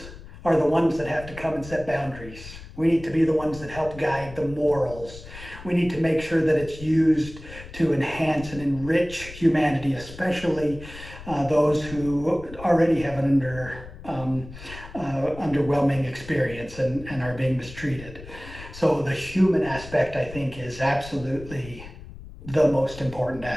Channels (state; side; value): noise; left; rumble, 15 dB below the sound